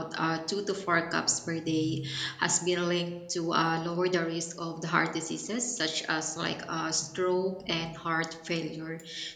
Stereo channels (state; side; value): identical; both; correlation 1.00